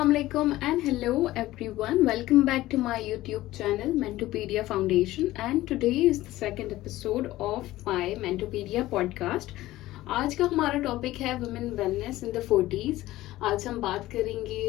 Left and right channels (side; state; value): right; quieter; 16.5 dB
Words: alaikum and hello everyone. Welcome back to my YouTube channel Mentopedia Foundation, and today is the second episode of my Mentopedia podcast. आज का हमारा topic है women wellness in the 40s। आज हम बात